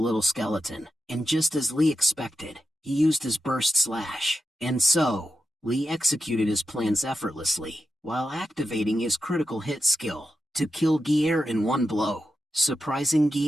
skeleton. And just as Lee expected, he used his burst slash, and so, Lee executed his plans effortlessly, while activating his critical hit skill, to kill Gier in one blow, surprising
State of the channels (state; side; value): normal; both; correlation 0.89